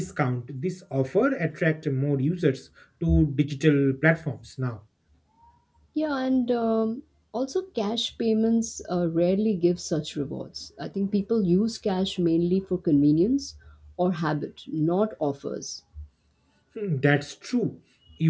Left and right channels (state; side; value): identical; both; correlation 1.00